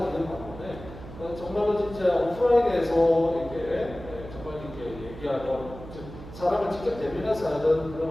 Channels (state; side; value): noise; right; hum, 14 dB below the sound